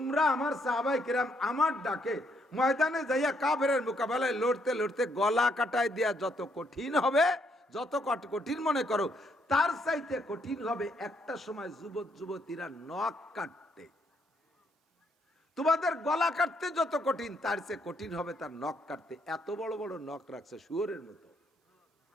আমার সাহাবাই কিরাম আমার ডাকে ময়দানে যাইয়া কাফেরের মোকাবেলায় লড়তে লড়তে গলা কাটায় দেয়া যত কঠিন হবে, যত কঠিন মনে করো, তার চাইতে কঠিন হবে একটা সময় যুবক যুবতীরা নখ কাটতে। তোমাদের গলা কাটতে যত কঠিন, তার চেয়ে কঠিন হবে তার নখ কাটতে। এত বড় বড় নখ রাখছে শুয়োরের মতো।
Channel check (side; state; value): both; normal; correlation 0.73